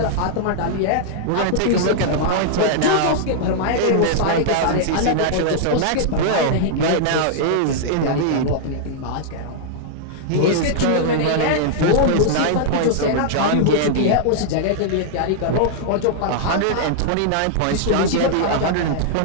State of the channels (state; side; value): different; both; correlation -0.01